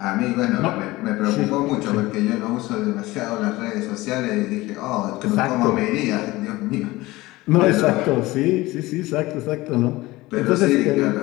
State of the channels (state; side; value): quieter; right; 19.6 dB